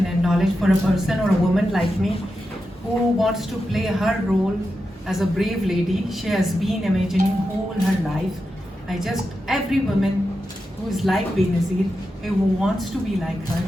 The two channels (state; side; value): normal; both; correlation 0.89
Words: and knowledge for a person or a woman like me who wants to play her role as a brave lady. She has been imagining whole her life. Every woman who is like Benazir, who wants to be like her,